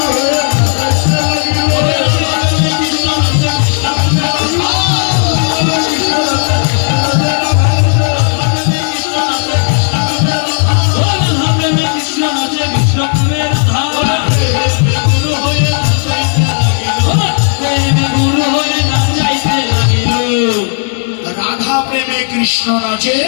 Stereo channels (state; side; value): silent; right; digital silence